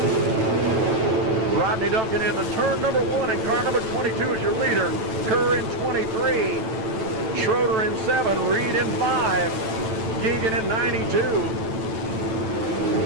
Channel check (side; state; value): left; late; 9.1 ms